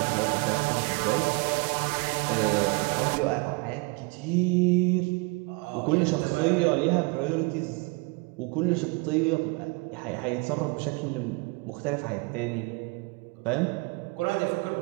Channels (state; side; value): quieter; left; 29.8 dB